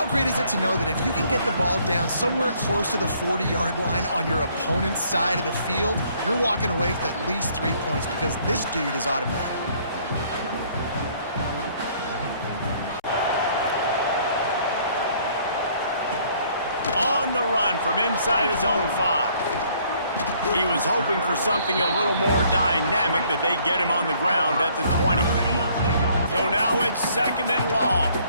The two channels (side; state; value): both; inverted; correlation -0.62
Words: great is it to know that if you can get the ball down somewhere close to the 40-yard line on your opponent's side of the field, you're walking away with at least 3 points because this dude is automatic. On the run from inside his own 5. He was hoping for something a little more dynamic, but they get him on the ground at the 20. So now it's 2nd and long.